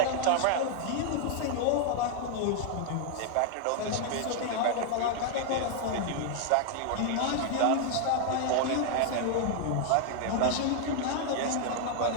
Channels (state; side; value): different; both; correlation 0.00